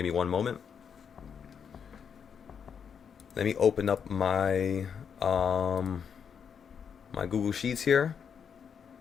me one moment. Let me open up my my Google Sheets here.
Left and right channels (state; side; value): quieter; right; 7.2 dB